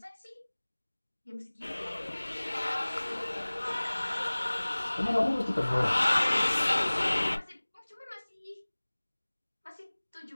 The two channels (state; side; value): inverted; both; correlation -1.00